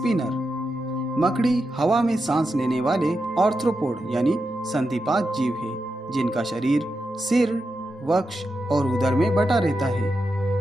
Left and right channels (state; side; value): normal; both; correlation 0.87